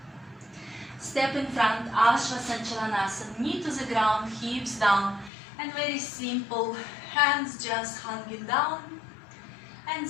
Step in front, Ashvasanchalanasana, knee to the ground, hips down, and very simple, hands just hanging down, and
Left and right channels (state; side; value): drops out; right; at 5.3 s